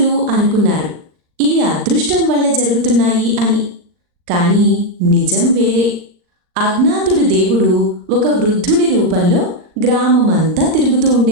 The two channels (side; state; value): left; late; 39 ms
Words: అనుకున్నారు, ఇవి అదృష్టం వల్ల జరుగుతున్నాయి అని. కానీ నిజం వేరే. అజ్ఞాతుడు దేవుడు ఒక వృద్ధుడి రూపంలో గ్రామమంతా తిరుగుతూ